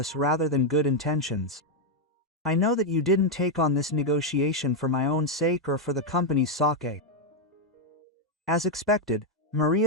rather than good intentions. I know that you didn't take on this negotiation for my own sake or for the company's sake. As expected,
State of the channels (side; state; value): both; normal; correlation 0.01